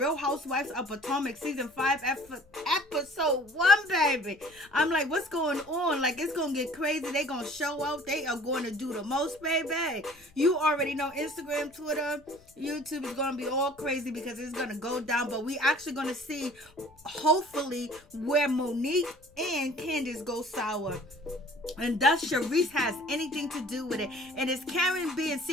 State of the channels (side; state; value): left; noise; rumble, 29 dB below the sound